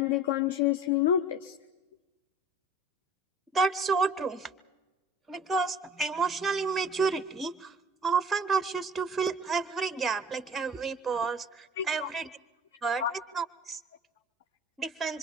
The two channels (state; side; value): normal; both; correlation 0.45